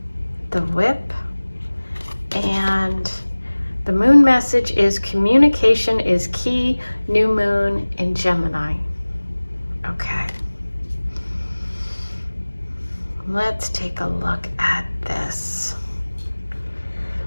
the whip, and the moon message is communication is key, new moon in Gemini. Okay. Let's take a look at this.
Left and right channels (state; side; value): inverted; both; correlation -1.00